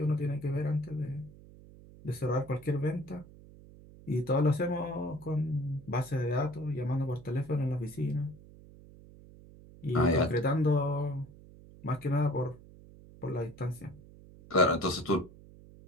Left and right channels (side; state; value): right; noise; hum, 20 dB below the sound